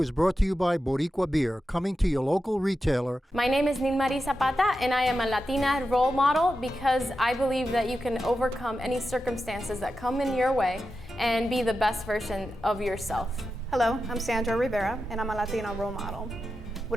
brought to you by Boricua Beer, coming to your local retailer. My name is Nilmarie Zapata, and I am a Latina role model because I believe that you can overcome any circumstances that come in your way and be the best version of yourself. Hello, I'm Sandra Rivera, and I'm a Latina role model.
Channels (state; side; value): normal; both; correlation 0.90